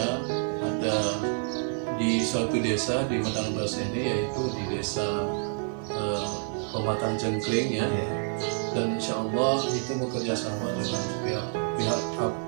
ada di suatu desa di Medang Beras ini, yaitu di desa Pematang Cengkring, ya. Dan insya Allah itu bekerja sama dengan pihak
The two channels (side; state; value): left; silent; 59 dB below the other